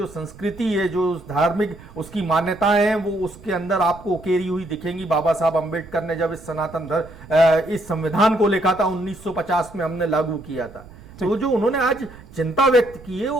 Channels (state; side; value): noise; right; rumble, 20 dB below the sound